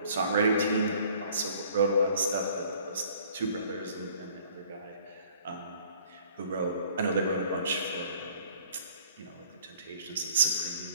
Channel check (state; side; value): inverted; both; correlation -0.55